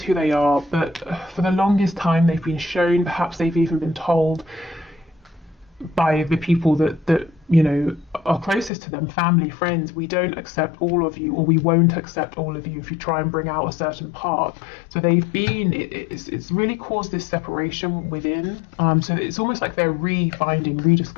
who they are, but for the longest time they've been shown, perhaps they've even been told by the people that you know are closest to them, family, friends, we don't accept all of you, or we won't accept all of you if you try and bring out a certain part. So they've been, it's really caused this separation within, so it's almost like they're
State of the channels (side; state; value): right; drops out; at 8.7 s